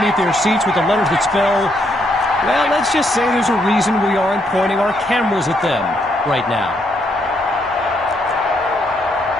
their seats with the letters that spell, well, let's just say there's a reason we aren't pointing our cameras at them right now.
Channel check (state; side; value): normal; both; correlation 0.74